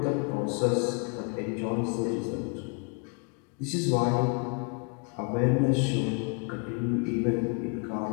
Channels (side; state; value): right; quieter; 37.3 dB